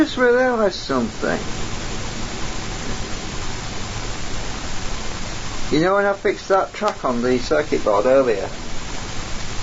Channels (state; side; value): identical; both; correlation 1.00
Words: realised something. You know when I fixed that track on the circuit board earlier?